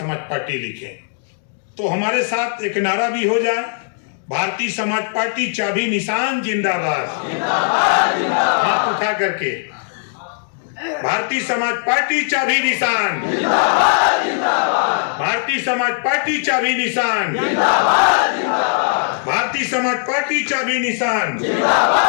पार्टी लिखें। तो हमारे साथ एक नारा भी हो जाए, भारतीय समाज पार्टी चाबी निशान जिंदाबाद। हाथ उठा करके भारतीय समाज पार्टी चाबी निशान, भारतीय समाज पार्टी चाबी निशान, भारतीय समाज पार्टी चाबी निशान।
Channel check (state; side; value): silent; right; digital silence